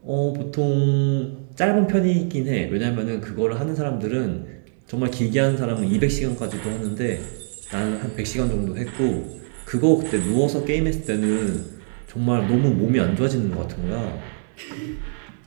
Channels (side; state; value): left; silent; 63 dB below the other